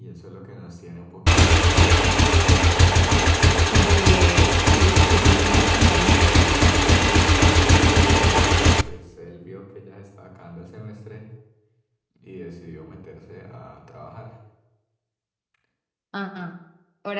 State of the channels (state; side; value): identical; both; correlation 1.00